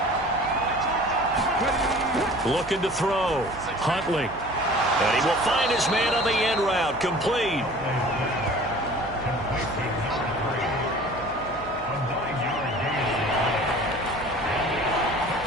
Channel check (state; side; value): noise; right; hum, 17 dB below the sound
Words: Looking to throw. Huntley. And he will find his man on the end route. Complete.